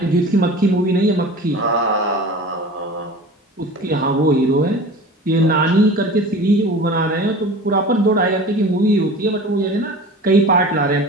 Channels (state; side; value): normal; both; correlation 0.38